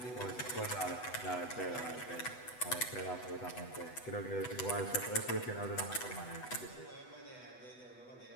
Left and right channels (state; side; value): late; right; 8.1 ms